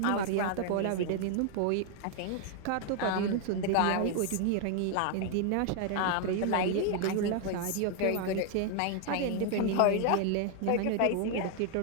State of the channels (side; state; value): both; different; correlation 0.00